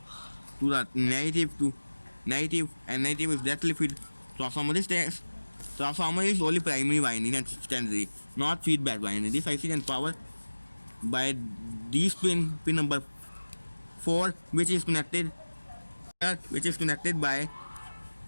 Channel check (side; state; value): both; inverted; correlation -1.00